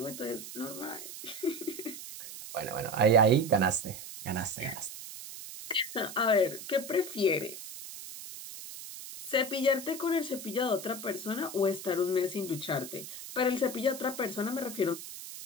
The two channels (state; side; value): noise; right; hiss, 11 dB below the sound